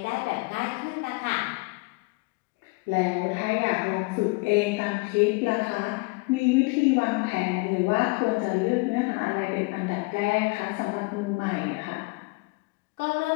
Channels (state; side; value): quieter; right; 27.5 dB